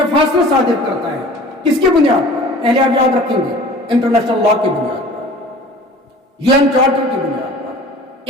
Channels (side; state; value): both; normal; correlation 0.44